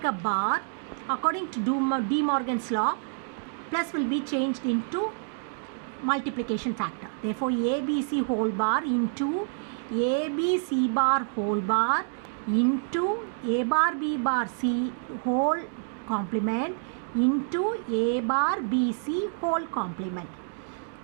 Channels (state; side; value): silent; left; digital silence